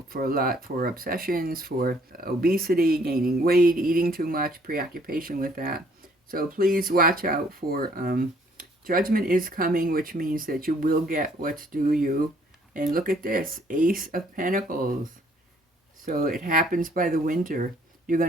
for a lot for obsessions, for obesity, gaining weight, eating too much, preoccupation with that. So please watch out for Judgment is coming, which means that you will get what's due you. And look at this, Ace of Pentacles. So it happens by the winter. You're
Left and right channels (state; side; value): normal; both; correlation 0.62